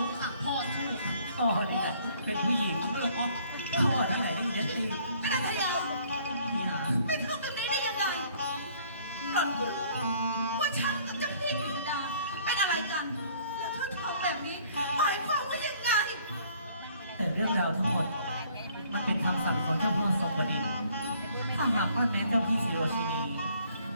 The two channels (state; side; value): inverted; both; correlation -0.59